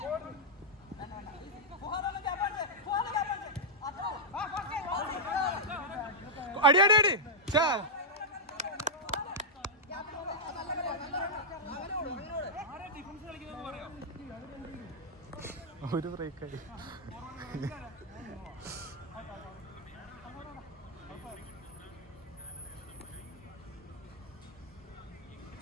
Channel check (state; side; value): normal; both; correlation -0.07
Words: അടി അടി അടി ചാ ഒരു ബ്രേക്കായി.